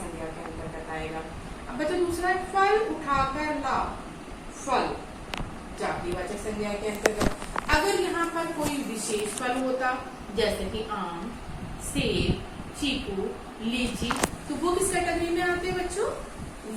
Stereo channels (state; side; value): identical; both; correlation 1.00